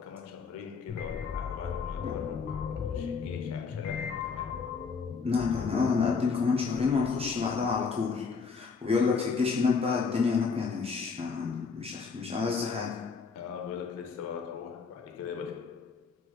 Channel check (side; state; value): right; quieter; 5.3 dB